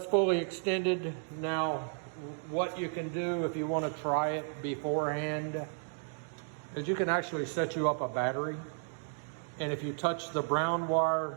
fully extended. Now, what you can do if you want to try it beforehand is you can actually set you up a battery. And if you touch the brown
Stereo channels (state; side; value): silent; left; 55 dB below the other